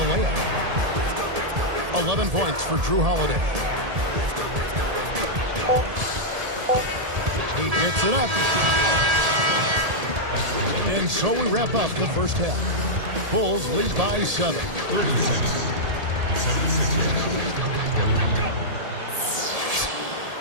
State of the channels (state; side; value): late; left; 1.7 ms